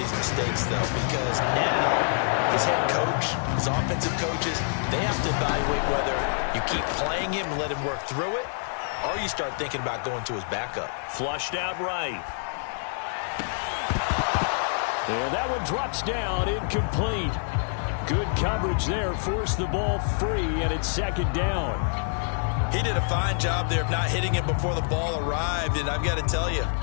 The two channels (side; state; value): right; silent; digital silence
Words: mistakes, though, because now his head coach, his offensive coaches, they have to evaluate whether you keep playing him and let him work through it, or you start thinking about going to his backup. Flushed out right. And that one drops down, incomplete. Good coverage there, forced the ball free, and it's 2nd down. He did a fine job there of not hitting him before the ball arrived, and I've got to tell you,